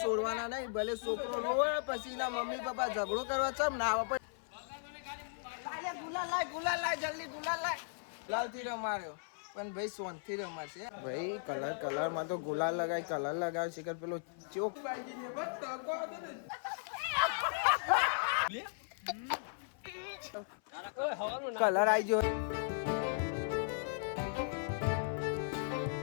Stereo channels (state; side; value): silent; right; 53 dB below the other